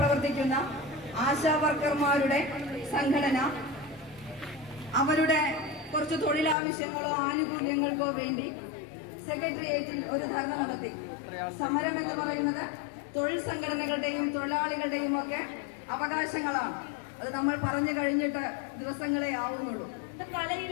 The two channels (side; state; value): right; drops out; at 6.6 s